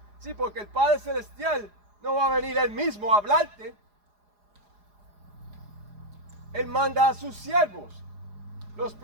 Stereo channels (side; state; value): left; late; 4.9 ms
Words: Sí, porque el Padre Celestial no va a venir él mismo a hablarte. Él manda a sus siervos, los